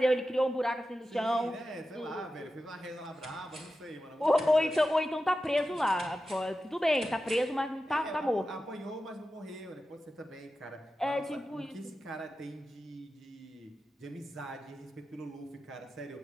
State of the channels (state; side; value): normal; both; correlation 0.92